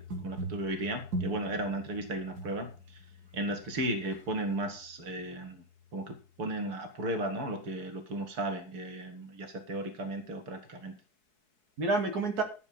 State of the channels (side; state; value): left; late; 4.6 ms